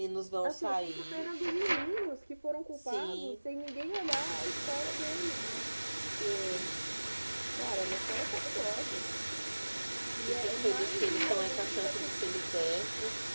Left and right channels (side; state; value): both; inverted; correlation -1.00